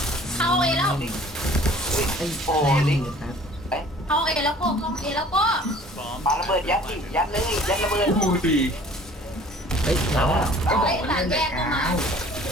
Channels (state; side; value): normal; both; correlation 0.51